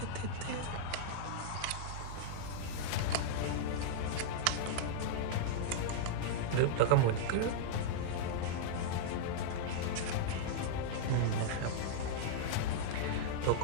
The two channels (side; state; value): both; different; correlation -0.02